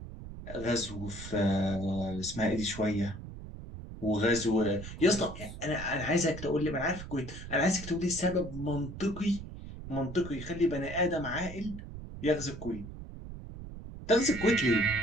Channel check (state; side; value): noise; right; rumble, 11 dB below the sound